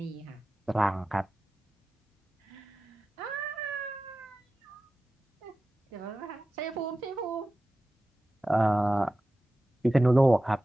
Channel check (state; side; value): normal; both; correlation 0.94